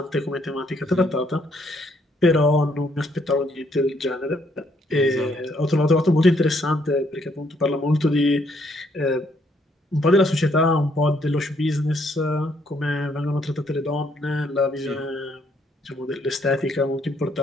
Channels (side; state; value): both; normal; correlation 0.70